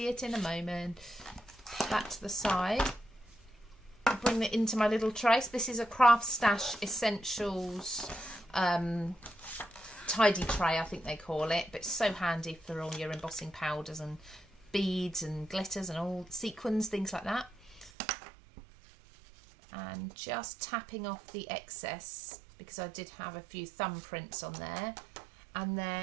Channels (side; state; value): left; drops out; at 17.9 s